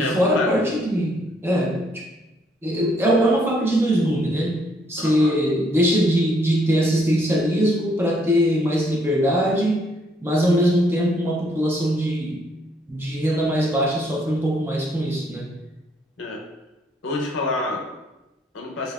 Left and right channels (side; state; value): both; normal; correlation 0.69